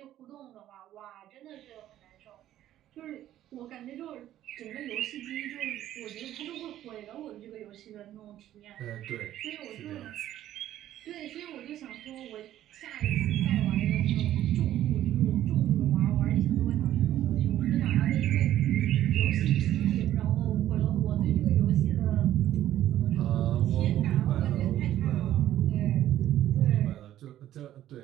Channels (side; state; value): left; quieter; 12.6 dB